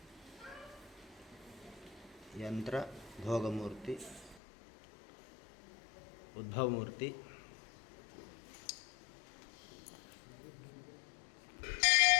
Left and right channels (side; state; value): right; drops out; at 4.4 s